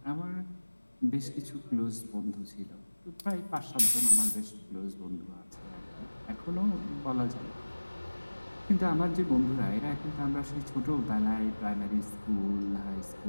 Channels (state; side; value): inverted; both; correlation -1.00